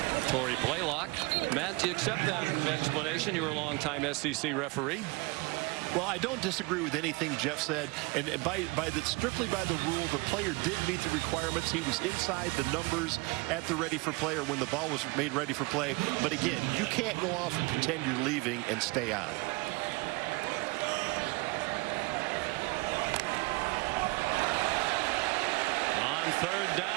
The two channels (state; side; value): quieter; left; 25.8 dB